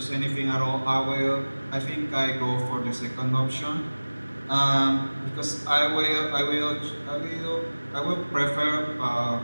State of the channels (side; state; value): both; inverted; correlation -1.00